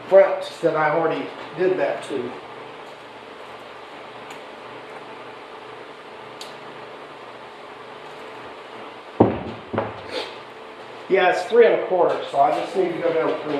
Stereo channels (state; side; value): identical; both; correlation 1.00